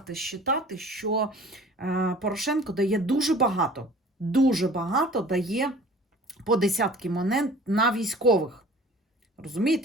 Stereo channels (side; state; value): both; normal; correlation 0.46